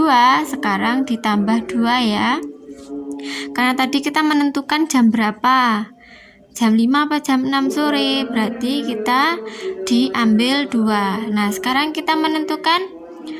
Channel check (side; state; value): both; identical; correlation 1.00